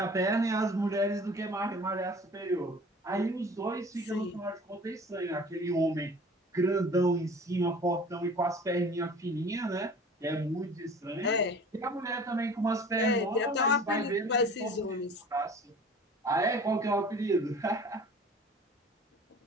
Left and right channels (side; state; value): both; normal; correlation 0.45